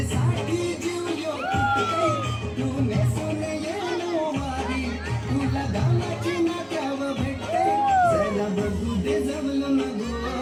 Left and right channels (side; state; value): both; identical; correlation 1.00